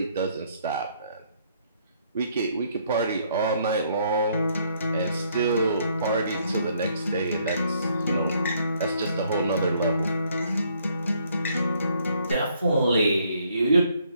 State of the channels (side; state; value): both; inverted; correlation -0.68